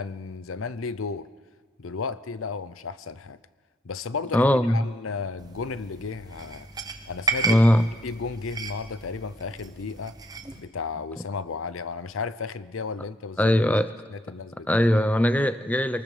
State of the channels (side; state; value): both; normal; correlation 0.71